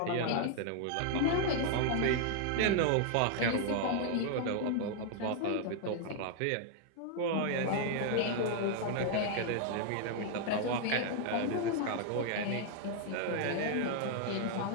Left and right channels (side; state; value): both; different; correlation 0.00